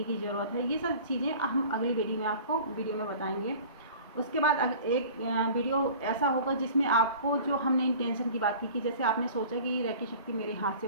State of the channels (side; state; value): both; inverted; correlation -0.43